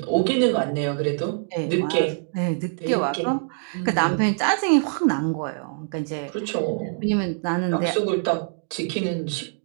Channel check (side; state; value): left; silent; digital silence